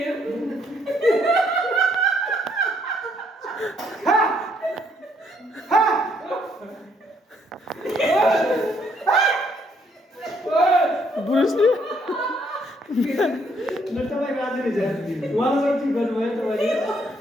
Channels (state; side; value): normal; both; correlation 0.69